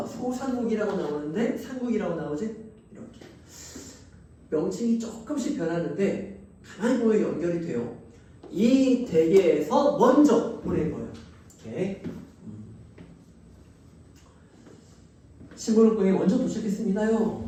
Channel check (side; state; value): both; identical; correlation 1.00